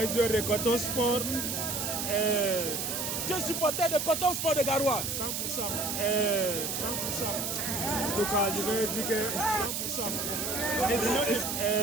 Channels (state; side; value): noise; right; hiss, 2 dB below the sound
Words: joueur de Coton Sport. Tu es supporter de Coton Sport de Garoua. 100%. 100%. En tout cas, je vais dire que 100%.